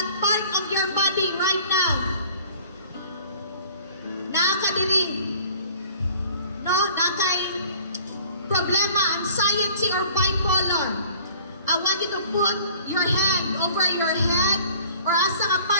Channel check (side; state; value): both; inverted; correlation -0.50